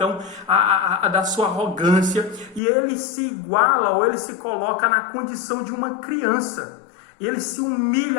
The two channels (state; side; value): drops out; right; at 2.6 s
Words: da sua arrogância, e ele se iguala, ou ele se coloca na condição de uma criança. Ele se